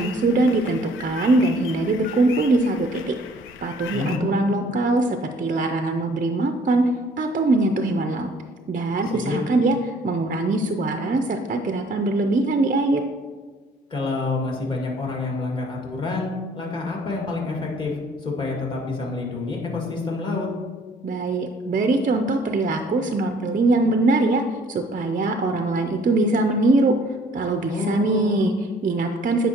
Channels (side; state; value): both; normal; correlation 0.58